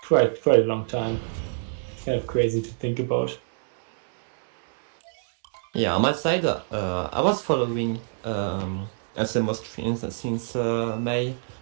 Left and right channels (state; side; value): silent; left; 61 dB below the other